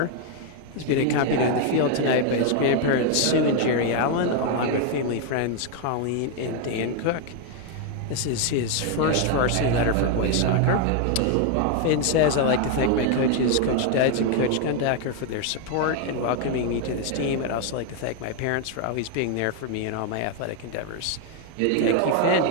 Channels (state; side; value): different; both; correlation 0.01